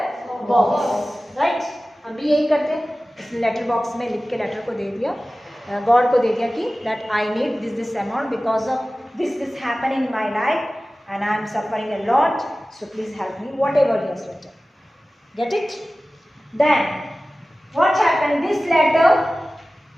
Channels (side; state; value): both; normal; correlation 0.96